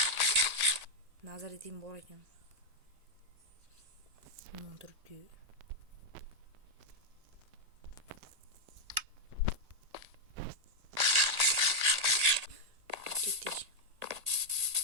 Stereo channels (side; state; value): left; late; 1.8 ms